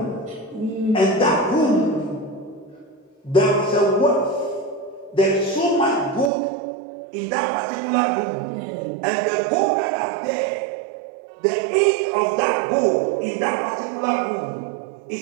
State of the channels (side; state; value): left; drops out; at 6.3 s